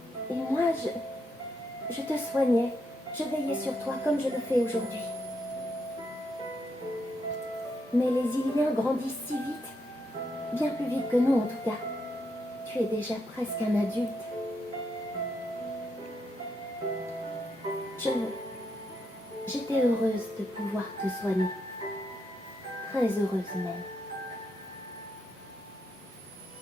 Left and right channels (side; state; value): both; normal; correlation 0.80